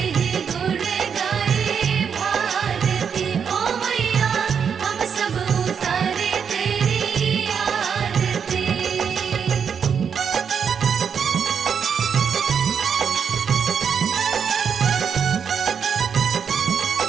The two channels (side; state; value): left; quieter; 7.0 dB